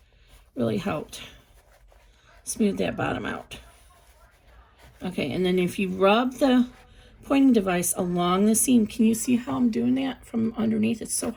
really helped smooth that bottom out. Okay, and then if you rub the pointing device along the seam, can you see how I'm doing that from underneath? It's so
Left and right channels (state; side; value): identical; both; correlation 1.00